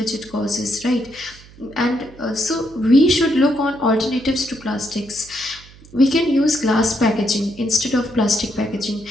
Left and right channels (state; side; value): noise; right; hum, 22 dB below the sound